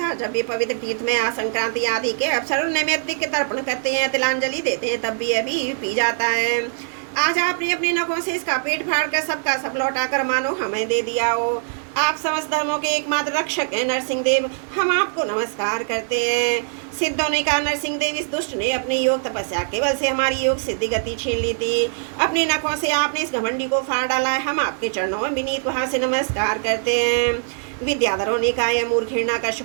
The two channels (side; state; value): left; silent; 64 dB below the other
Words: जब भी पवित्र तीर्थ में संक्रांति आदि के अवसर नैमित्तिक के तर्पण करते हैं, तिलांजलि देते हैं, तब भी अभी पी जाता है। आज आपने अपने नखों से इसका पेट फाड़ कर सबका सब लौटा कर मानो हमें दे दिया हो। आप समस्त धर्मों के एकमात्र रक्षक हैं नरसिंह देव, हम आपको नमस्कार करते हैं। सिद्धों ने कहा नरसिंह देव, इस दुष्ट ने अपनी योग तपस्या केवल से हमारी योग सिद्धि गति छीन ली थी। अपनी नखों से आपने इस घमंडी को फाड़ डाला है, हम आपके चरणों में विनीत वहां से नमस्कार करते हैं। विद्याधरों ने कहा यह मूर्ख